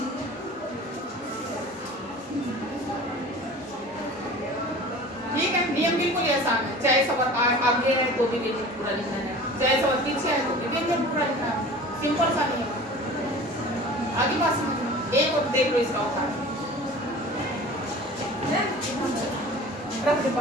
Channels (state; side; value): normal; both; correlation 0.40